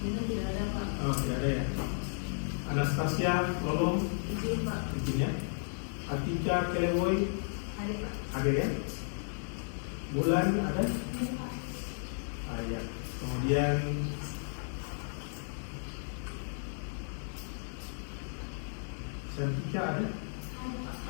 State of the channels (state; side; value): silent; right; 55 dB below the other